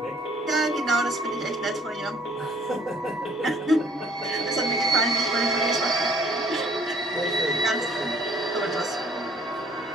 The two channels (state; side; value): normal; both; correlation 0.57